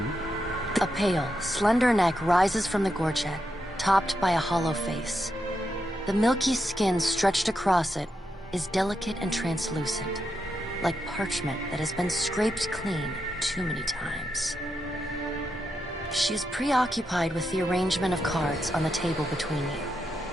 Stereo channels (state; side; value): normal; both; correlation 0.84